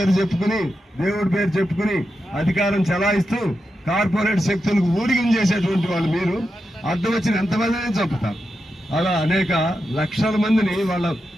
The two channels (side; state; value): both; normal; correlation 0.88